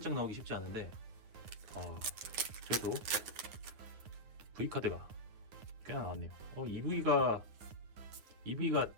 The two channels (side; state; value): left; late; 9.3 ms